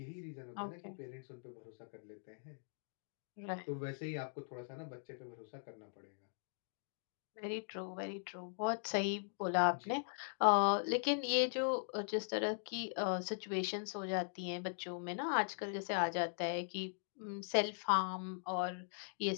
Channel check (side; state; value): right; silent; digital silence